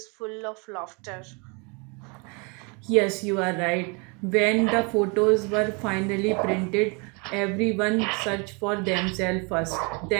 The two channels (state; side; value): quieter; left; 32.1 dB